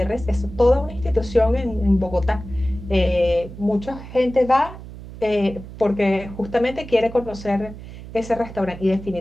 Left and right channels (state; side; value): noise; right; hum, 14 dB below the sound